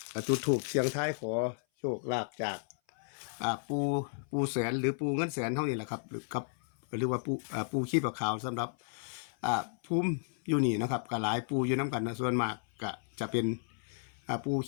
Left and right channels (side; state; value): right; silent; 55 dB below the other